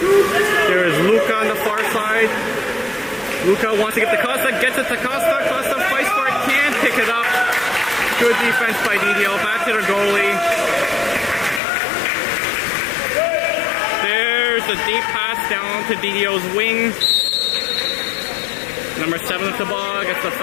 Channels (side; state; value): right; drops out; at 11.6 s